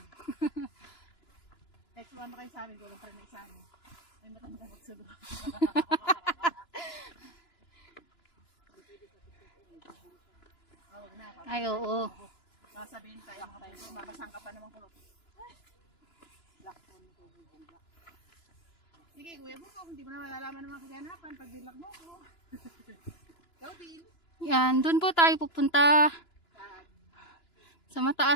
Next one kayo sa amin, kulang pa rin na isa. Ay matanda magsudo. Ay oo. Sasabihin tayo mga tayo, mabasang ka pa naman kulot. Sige, kuya mo, kung hindi mo na malalaman ng mga kaganapan, pag bilak mo ko. Ikaw din. Yan, dun po tayo pupunta. Sa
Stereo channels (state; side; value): late; right; 2.9 ms